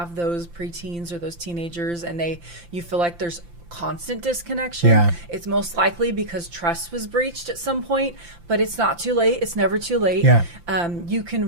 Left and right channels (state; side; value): late; left; 5.8 ms